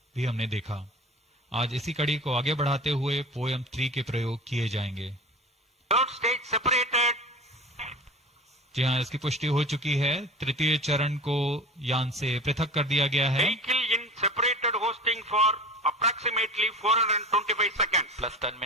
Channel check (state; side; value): normal; both; correlation 0.35